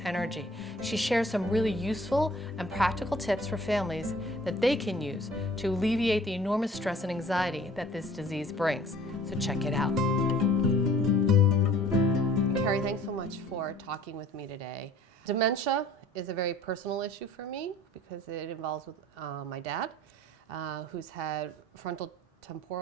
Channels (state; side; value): normal; both; correlation 0.52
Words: She shares some really useful and practical tips for families that they can use to alleviate the enormous stress and anxiety that this disease brings. So check it out. Carrie, thanks so much for talking with me today. Dementia is a very personal issue for me because it involves with my dad, who's had frontal